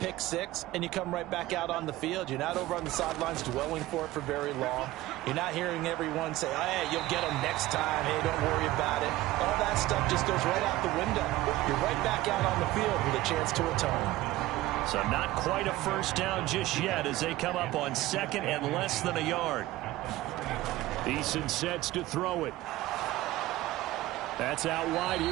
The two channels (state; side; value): quieter; left; 17.0 dB